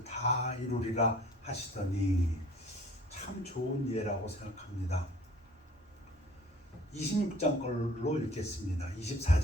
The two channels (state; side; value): normal; both; correlation 0.50